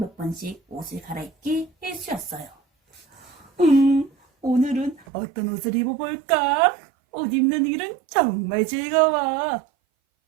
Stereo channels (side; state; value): left; drops out; at 5.1 s